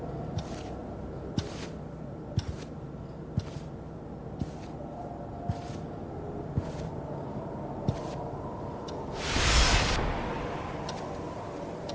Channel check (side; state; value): both; identical; correlation 1.00